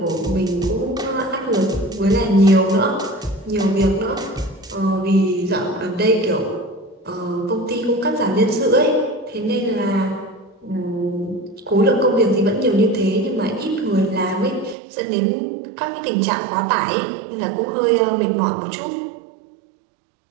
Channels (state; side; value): drops out; left; at 14.8 s